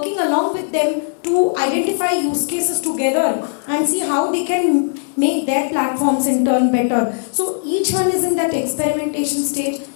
along with them to identify use cases together and see how they can make their platforms in turn better. So each one is in that experimentation stage.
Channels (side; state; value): right; silent; digital silence